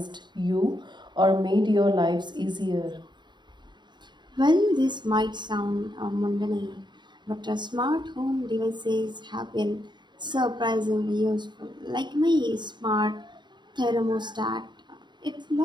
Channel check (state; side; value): late; left; 0.22 ms